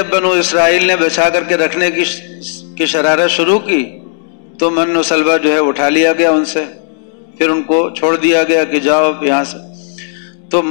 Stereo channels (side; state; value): right; silent; digital silence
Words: بنو اسرائیل نے بچا کر کے رکھنے کی شرارت شروع کی تو من و سلوہ جو ہے اٹھا لیا گیا ان سے، پھر ان کو چھوڑ دیا گیا کہ جاؤ یہاں سے۔ تو